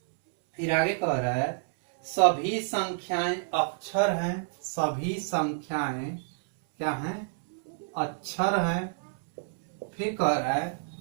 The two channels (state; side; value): silent; left; 59 dB below the other